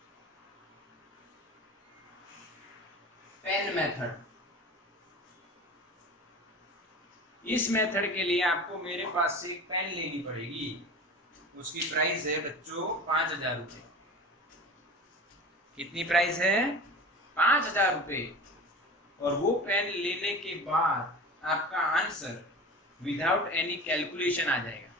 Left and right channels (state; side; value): normal; both; correlation 0.35